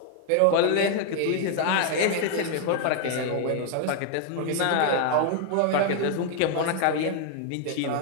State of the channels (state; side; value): different; both; correlation 0.00